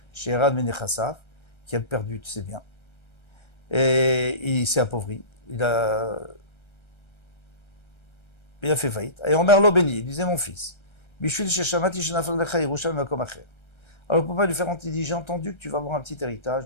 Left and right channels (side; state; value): right; late; 1.3 ms